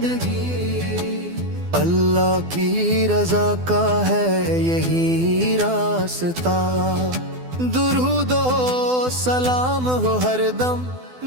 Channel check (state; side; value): late; left; 12 ms